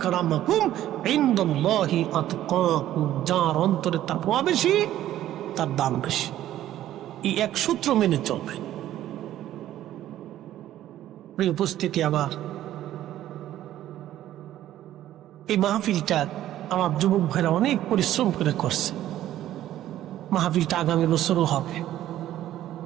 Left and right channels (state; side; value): quieter; left; 12.9 dB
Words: ইনদাল্লাহি আতকাকুম। যার অন্তরে তাকওয়া বেশি, তার দাম বেশি। এই এক সূত্র মেনে চলবে। প্রিয় উপস্থিতি, আবার এই মাহফিলটা আমার যুবক ভাইরা অনেক পরিশ্রম করে করছে। মাহফিলটা আগামী বছরও হবে।